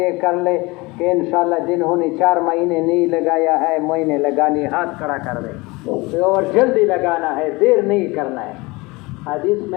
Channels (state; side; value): quieter; right; 23.8 dB